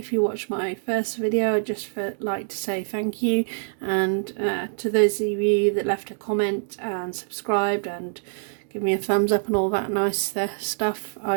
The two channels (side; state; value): left; silent; digital silence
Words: you watched my first video, I'd just like to say thank you, and to those of you that left a comment and subscribed and give me a thumbs up and all that nice stuff,